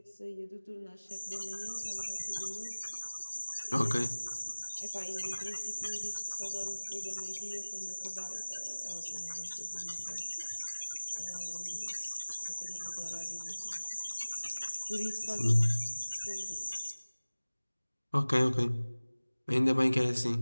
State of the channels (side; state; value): both; inverted; correlation -1.00